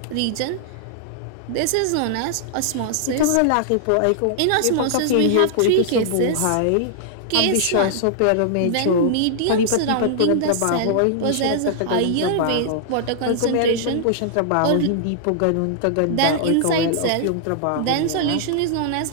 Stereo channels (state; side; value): different; both; correlation -0.01